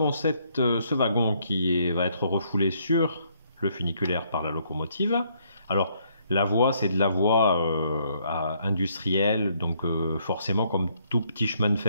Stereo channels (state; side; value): inverted; both; correlation -0.70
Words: ce wagon qui va être refoulé sur le funiculaire par la locomotive. Alors, la voie, c'est de la voie industrielle, donc forcément, comme tout petit chemin de